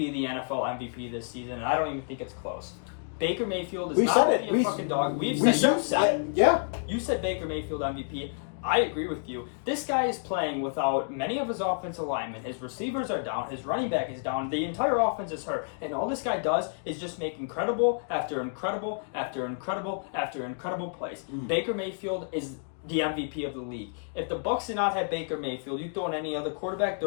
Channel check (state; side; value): silent; right; digital silence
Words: the NFL MVP this season, and I don't even think it's close. Baker Mayfield is not only a fucking dog. You said Baker Mayfield MVP. I agree with you. This guy is playing without many of his offensive linemen. His receivers are down. His running back is down. The entire offense is hurt. And all this guy does is just make incredible after incredible after incredible after incredible plays. Baker Mayfield is the MVP of the league. If the Bucs did not have Baker Mayfield, you throw in any other quarterback,